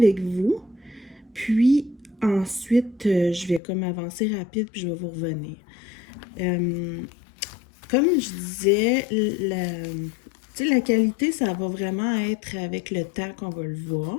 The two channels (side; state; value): right; drops out; at 3.6 s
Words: vous, puis ensuite, je vais comme avancer rapide, puis je vais vous revenir. Comme je disais, la qualité, ça va vraiment être avec le temps qu'on va le